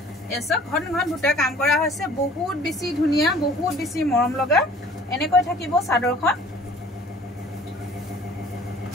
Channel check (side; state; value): both; normal; correlation 0.51